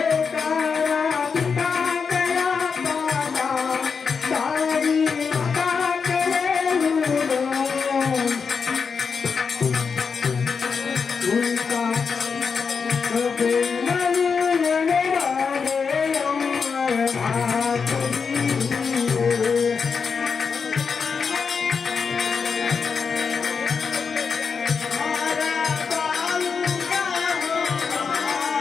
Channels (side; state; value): right; quieter; 5.7 dB